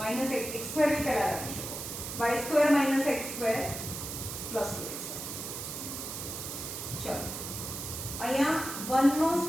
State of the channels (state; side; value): noise; right; hiss, 7 dB below the sound